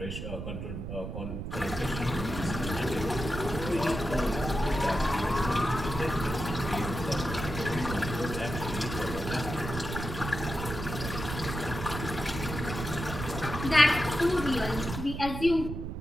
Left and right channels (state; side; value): noise; right; rumble, 6 dB below the sound